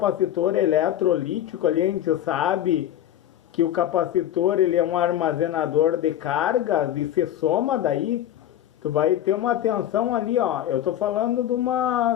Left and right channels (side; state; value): right; quieter; 11.6 dB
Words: eletrolítico, ali a gente sabe que o capacitor ele é um armazenador de cargas e se soma daí, tu vai ter uma tensão ali, ó. Eu estou falando de